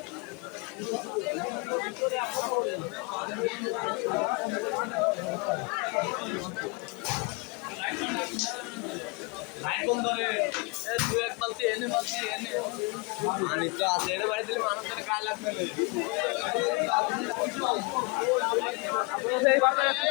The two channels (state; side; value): quieter; right; 29.9 dB